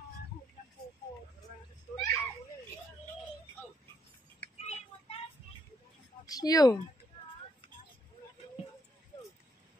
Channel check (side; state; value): both; normal; correlation 0.74